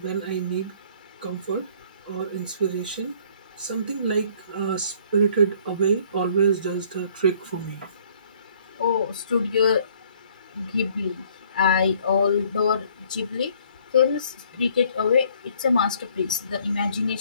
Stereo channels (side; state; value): both; inverted; correlation -0.59